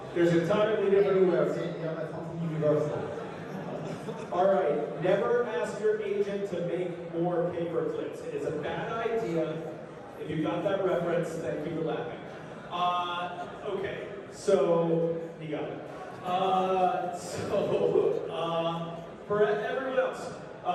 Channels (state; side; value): identical; both; correlation 1.00